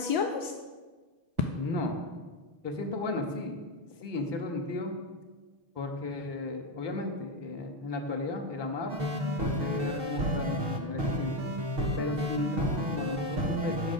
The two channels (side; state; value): left; late; 6.5 ms